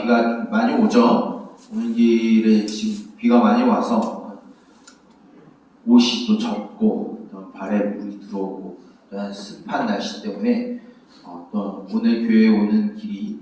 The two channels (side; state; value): both; identical; correlation 1.00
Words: 비가 많이 오죠. 오는 길에 지금 비가 많이 와서 옷이 또 젖고 발에 물이 들어오고 습한 날씨 때문에 또 오늘 교회에 오는 길이